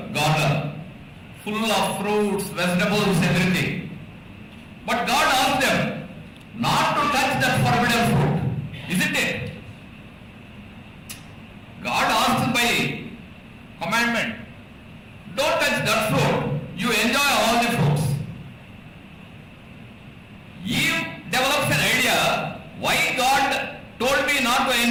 garden, full of fruits, vegetables, everything. But God asked them not to touch that forbidden fruit, isn't it? God asked by commandment, don't touch that fruit, you enjoy all the fruits. Eve develops an idea, why God told me not to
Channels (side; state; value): both; identical; correlation 1.00